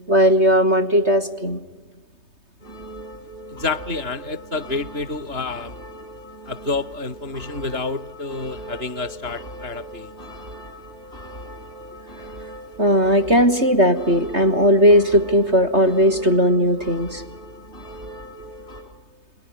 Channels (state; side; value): late; left; 3.2 ms